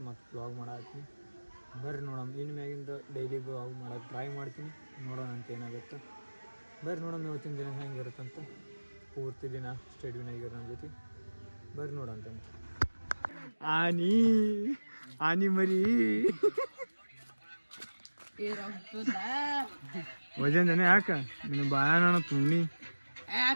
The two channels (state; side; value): inverted; both; correlation -1.00